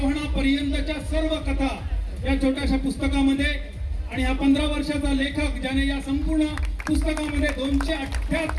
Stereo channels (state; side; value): identical; both; correlation 1.00